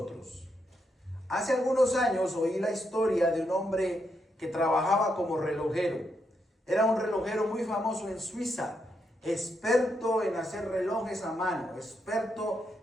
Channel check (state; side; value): normal; both; correlation 0.81